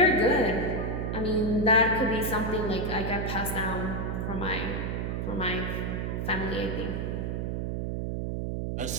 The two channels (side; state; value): right; noise; hum, 1 dB below the sound